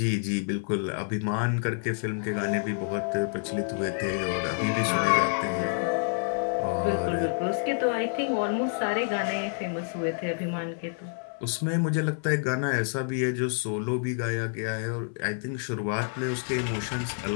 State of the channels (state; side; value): silent; right; 57 dB below the other